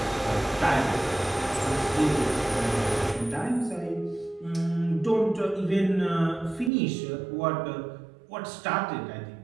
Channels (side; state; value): left; drops out; at 6.7 s